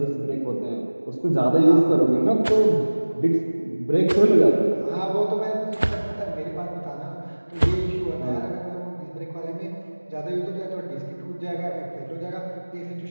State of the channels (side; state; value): both; inverted; correlation -1.00